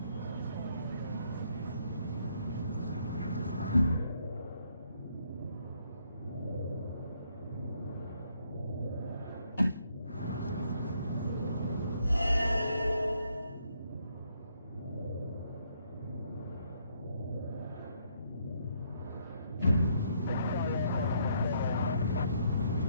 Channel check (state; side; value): inverted; both; correlation -0.72